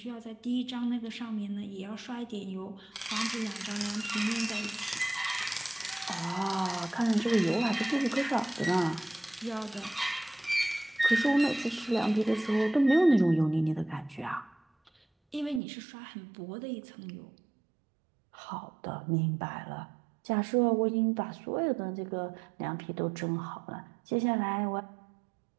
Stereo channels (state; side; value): drops out; left; at 15.6 s